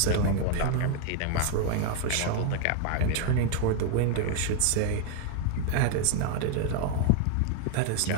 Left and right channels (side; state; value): both; different; correlation 0.01